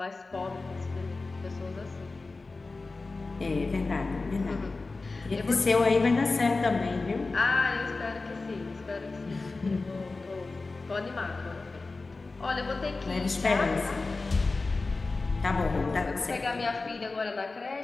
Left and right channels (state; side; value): quieter; right; 3.6 dB